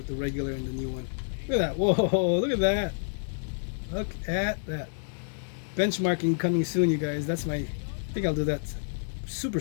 the regular and the new one. Look at that! Whoa! Look at that! Look at that! Benchmarking coming soon, you guys. I think I'll do that super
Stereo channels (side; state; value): right; silent; 59 dB below the other